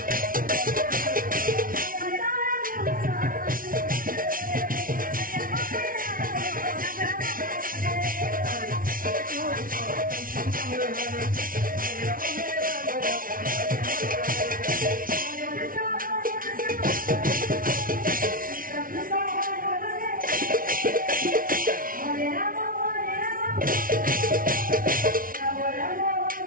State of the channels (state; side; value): late; left; 0.41 ms